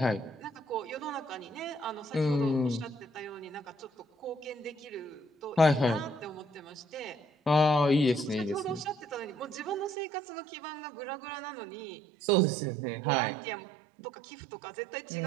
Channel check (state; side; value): drops out; left; at 10.0 s